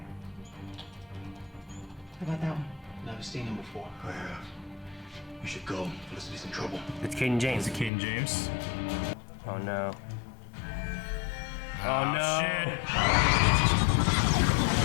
How about that one? Never seen him before. I have. We should go. Felicity's in trouble. It's Cayden James. Is it Cayden James? Oh no. Oh Oh, no. shit.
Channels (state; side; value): drops out; right; at 7.9 s